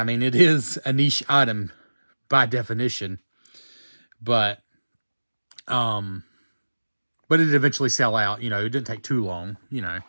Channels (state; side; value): inverted; both; correlation -1.00